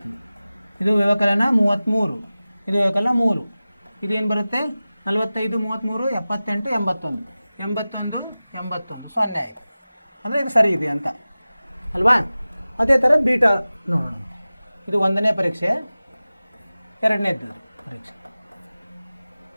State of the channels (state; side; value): inverted; both; correlation -0.97